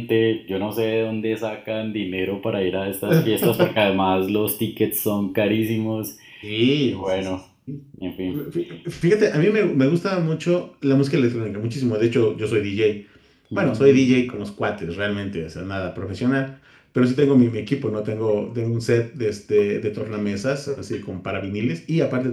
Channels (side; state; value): both; identical; correlation 1.00